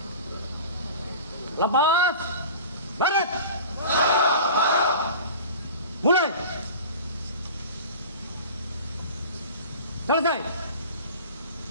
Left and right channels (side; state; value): both; inverted; correlation -0.37